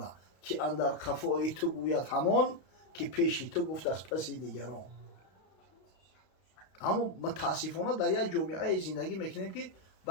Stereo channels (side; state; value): right; late; 32 ms